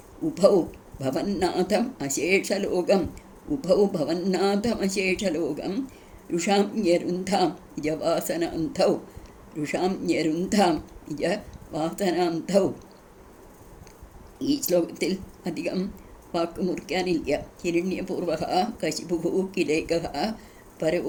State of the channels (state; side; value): identical; both; correlation 1.00